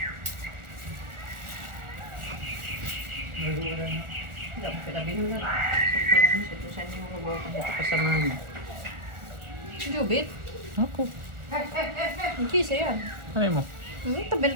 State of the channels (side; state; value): left; late; 1.4 ms